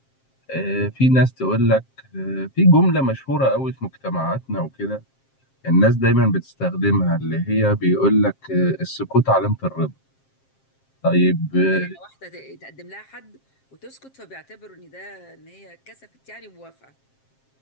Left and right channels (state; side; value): late; right; 7.5 ms